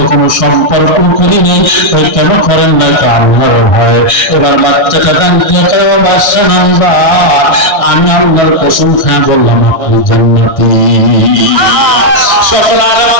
সম্পর্ক করি নাই। ওই কেন করেন না? তো আল্লাহর ভয়। এবার বাচ্চাটা গান দিয়ে বাচ্চা নামবা, আমি আল্লাহর কসম খায় বললাম আপনি জান্নাতি। সকল আলেম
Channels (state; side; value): late; right; 1.6 ms